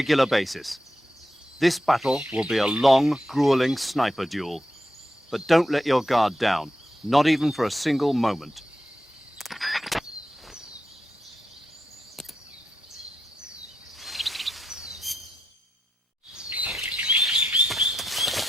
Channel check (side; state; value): both; normal; correlation 0.86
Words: basis. This battle will be a long, grueling sniper duel. But don't let your guard down, not even for a single moment.